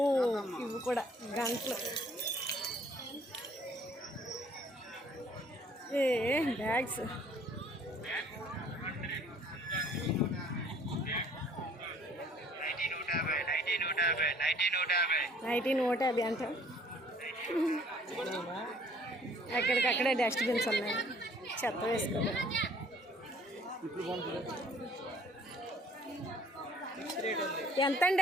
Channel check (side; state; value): both; normal; correlation 0.57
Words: ఇవి కూడా గంటలు. బ్యాగ్స్ నైటీ 150 అంట. ఎక్కడికక్కడే డస్ట్బిన్స్ ఉన్నాయి, చెత్త వేసుకోవాలి. ఎంతండి